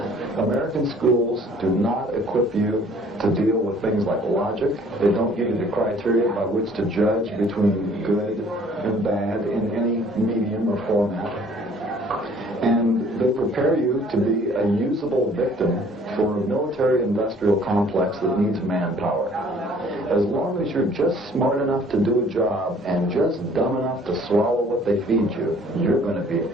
American schools do not equip you to deal with things like logic. They don't give you the criteria by which to judge between good and bad in any medium or format. And they prepare you to be a usable victim for a military-industrial complex that needs manpower. As long as you're just smart enough to do a job and just dumb enough to swallow what they feed you, you're going to be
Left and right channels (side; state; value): both; normal; correlation 0.56